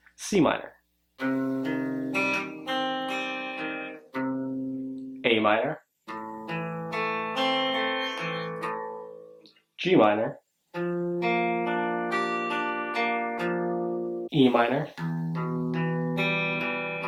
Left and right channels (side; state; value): both; identical; correlation 1.00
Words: C minor, A minor, G minor, E minor,